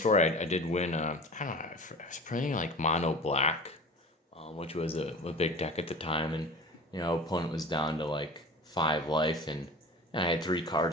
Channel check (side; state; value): both; normal; correlation 0.37